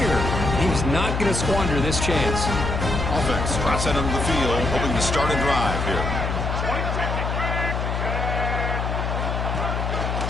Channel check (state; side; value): noise; left; hum, 1 dB below the sound